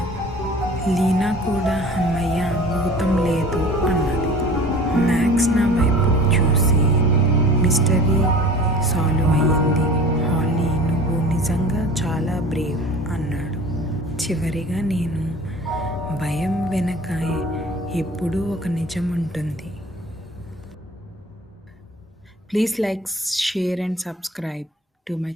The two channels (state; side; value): normal; both; correlation 0.43